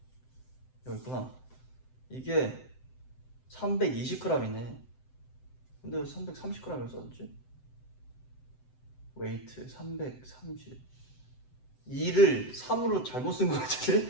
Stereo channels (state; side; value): late; right; 7.8 ms